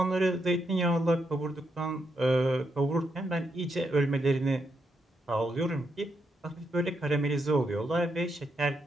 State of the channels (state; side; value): normal; both; correlation 0.80